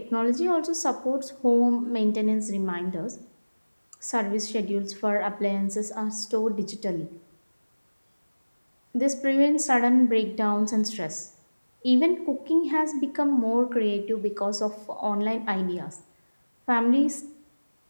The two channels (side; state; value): both; inverted; correlation -1.00